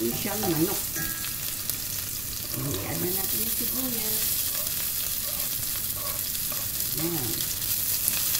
siyang manok. I-add na natin yung sibuyas. Yan.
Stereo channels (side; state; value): right; noise; rumble, 10 dB below the sound